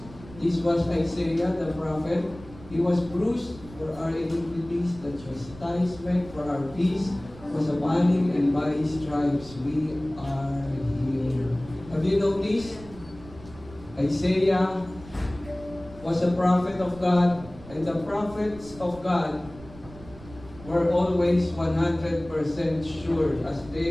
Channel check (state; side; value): noise; right; rumble, 18 dB below the sound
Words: This was Isaiah the prophet. He was bruised for our iniquities. The chastisement for our peace was upon Him, and by His stripes we are healed. Have you noticed? Isaiah was a prophet of God, and the prophets of God were always 100% sure as